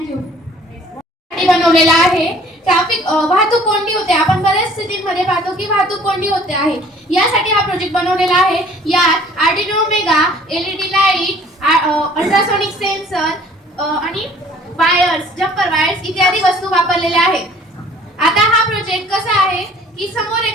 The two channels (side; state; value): both; normal; correlation 0.53